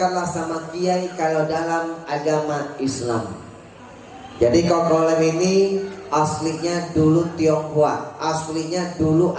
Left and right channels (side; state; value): both; identical; correlation 1.00